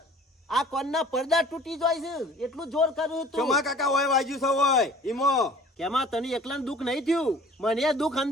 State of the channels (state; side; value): normal; both; correlation 0.49